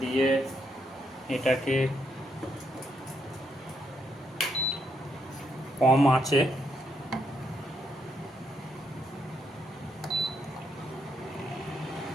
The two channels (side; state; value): both; normal; correlation 0.78